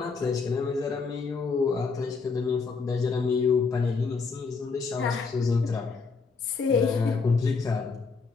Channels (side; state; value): right; quieter; 4.7 dB